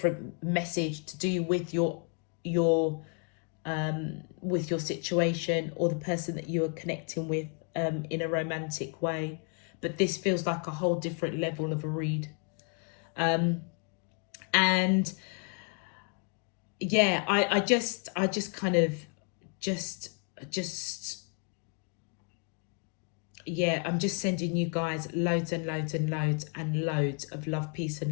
message to do with your situation or the person that you are connecting with in a romantic way. But this feels like a whole different level of a read. And yeah, I just kind of yeah, I'm just sending you guys loads and loads and loads and loads of love, peace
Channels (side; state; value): right; quieter; 39.2 dB